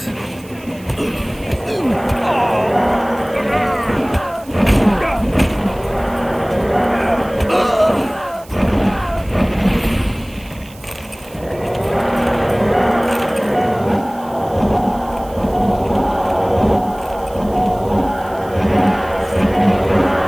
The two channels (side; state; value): right; noise; hiss, 23 dB below the sound